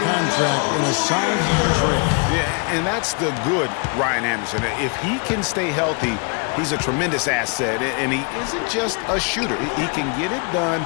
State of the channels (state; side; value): quieter; right; 34.8 dB